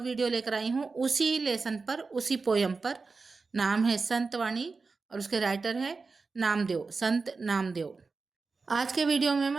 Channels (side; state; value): left; quieter; 4.3 dB